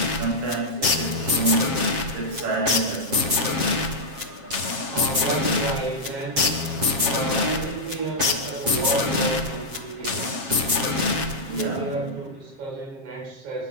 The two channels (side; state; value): left; late; 7.4 ms